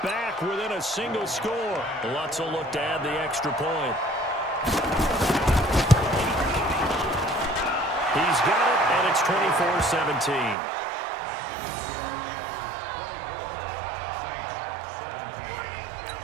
back within a single score. Lutz will look to add the extra point. He's got it, and it's 24-17.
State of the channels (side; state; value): left; drops out; at 10.6 s